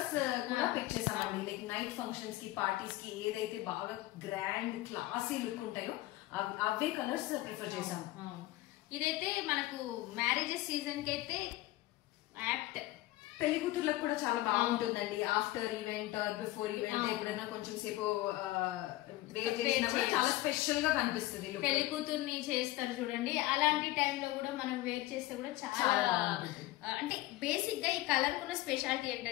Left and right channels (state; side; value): quieter; right; 17.3 dB